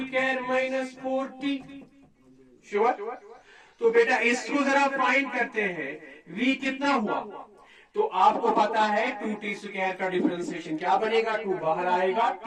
minus 4t। Sure. तो बेटा इसको जरा फाइंड करते हैं, v कितना हुआ, तो आपको पता है 2t² का डिफरेंशिएशन क्या बनेगा, 2 बाहर आएगा,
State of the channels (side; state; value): both; identical; correlation 1.00